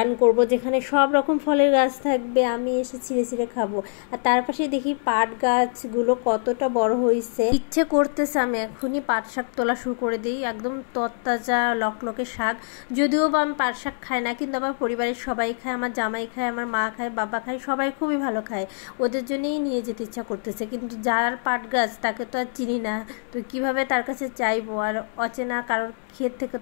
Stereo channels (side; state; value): right; silent; digital silence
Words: করব যেখানে সব রকম ফলের গাছ থাকবে, আমি এসে ছিঁড়ে ছিঁড়ে খাবো। আর তার পাশে দেখি পাট গাছগুলো কতটা বড় হয়েছে, ইচ্ছে করতেছে আমি এখনই পাট শাক তোলা শুরু করে দিই। একদম তরতাজা লকলকে শাক। যদিও বা আমি পাট শাক খাই না, কিন্তু আমার পরিবারের সবাই খায়, আমার জামাই খায়, আমার মা খায়, বাবা খায়, সবাই খুবই ভালো খায়। ওদের জন্যই নিয়ে যেতে ইচ্ছা করতেছে, কিন্তু যার পাট গাছ তাকে তো আর চিনি না, তো কিভাবে তার কাছে চাইবো? আর অচেনা কারোর ক্ষেত থেকে